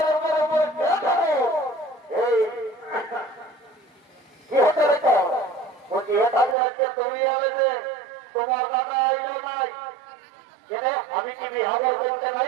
তোমার দাদা আইলো নাই, আমি কি বিহার করতে নাই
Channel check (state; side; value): drops out; left; at 6.6 s